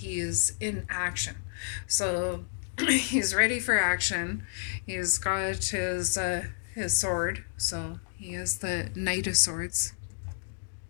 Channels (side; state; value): right; silent; digital silence